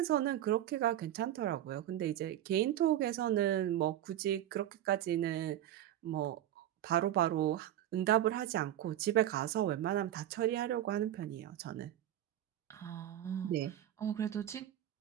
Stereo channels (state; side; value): quieter; left; 12.2 dB